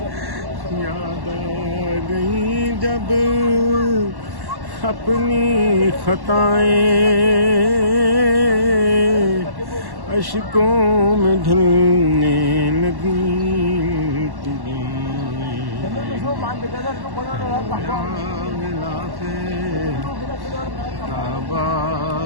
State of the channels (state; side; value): late; left; 1.1 ms